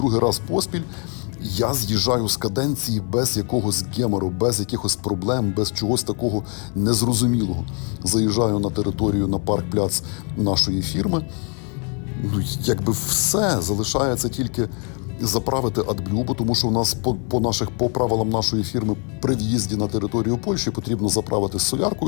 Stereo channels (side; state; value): right; quieter; 37.3 dB